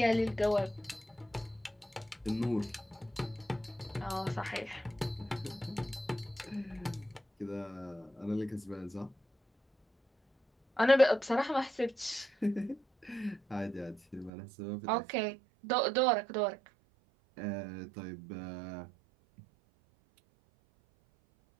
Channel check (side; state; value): left; drops out; at 14.3 s